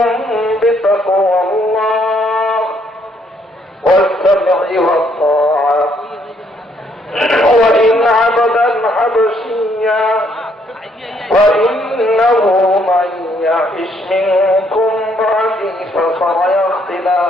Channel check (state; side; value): normal; both; correlation 0.69